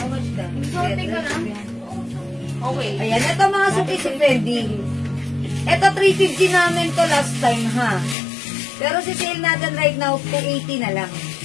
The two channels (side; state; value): right; drops out; at 8.2 s